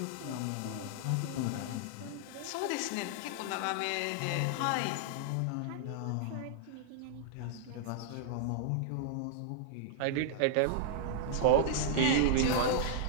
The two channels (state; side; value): different; both; correlation -0.01